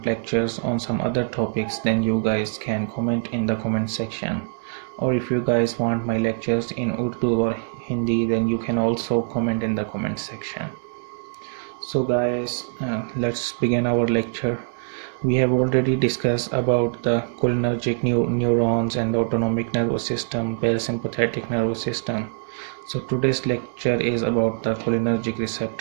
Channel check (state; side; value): silent; left; digital silence